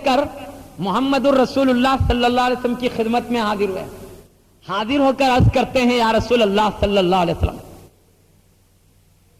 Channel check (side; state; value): both; identical; correlation 1.00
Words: کر محمد الرسول اللہ صلی اللہ علیہ وسلم کی خدمت میں حاضر ہوئے. حاضر ہو کر عرض کرتے ہیں یا رسول اللہ صلی اللہ علیہ وسلم,